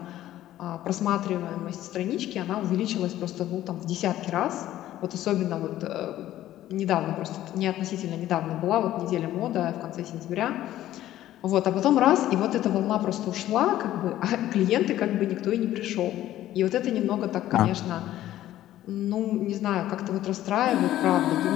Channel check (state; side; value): quieter; right; 13.6 dB